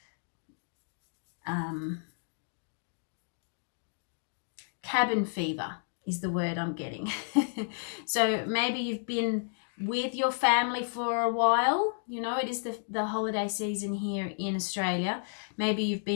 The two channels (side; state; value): right; silent; digital silence